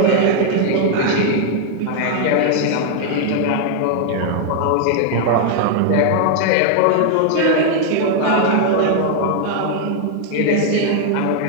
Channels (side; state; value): both; different; correlation 0.00